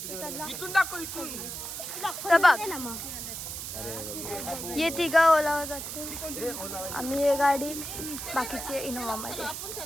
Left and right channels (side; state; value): right; noise; hiss, 7 dB below the sound